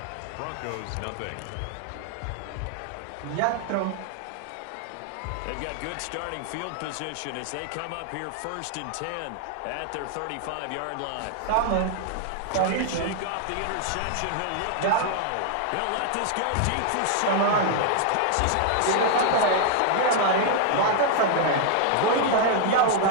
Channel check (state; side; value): different; both; correlation 0.00